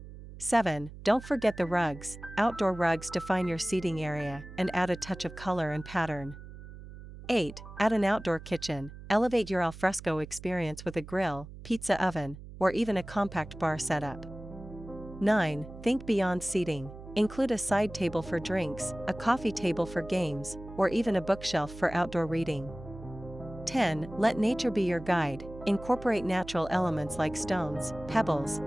7. Don't forget the rugs. Outdoor rugs define your seating area and add a touch of color and pattern. 8. Add an outdoor kitchen. Elevate your alfresco experience with a grill, pizza oven, or even a compact bar setup. 9. Think beyond seating. Include a side table for drinks, a coffee table for games, or even a bookshelf for outdoor reading. 10. Let nature be your guide. Incorporate natural elements like stones, pebbles,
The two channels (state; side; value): noise; right; hum, 15 dB below the sound